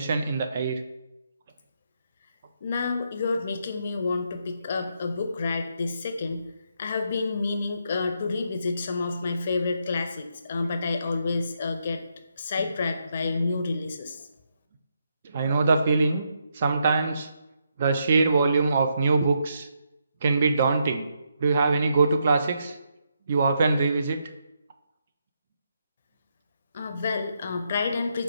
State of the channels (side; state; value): both; inverted; correlation -0.79